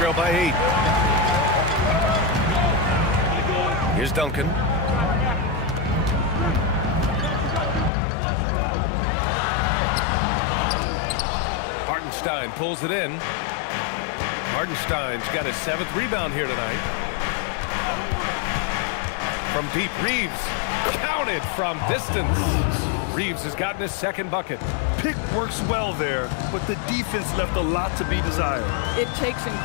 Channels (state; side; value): drops out; right; at 7.9 s